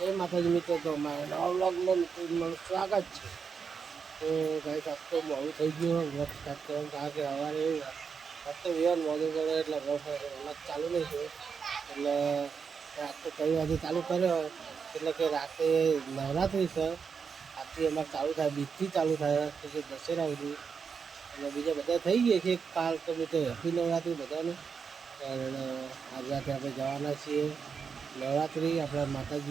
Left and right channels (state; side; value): quieter; left; 6.0 dB